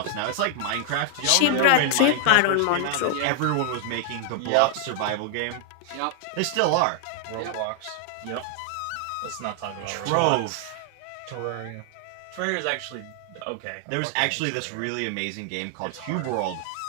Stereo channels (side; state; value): both; different; correlation 0.00